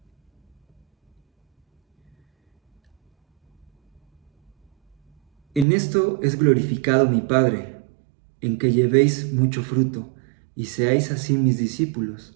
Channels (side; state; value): left; drops out; at 5.7 s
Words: En esto es glorificado mi Padre, en que llevéis mucho fruto y seáis así mis